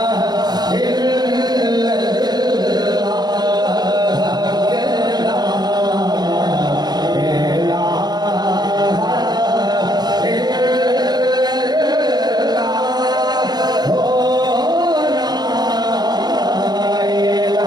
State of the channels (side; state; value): left; late; 0.20 ms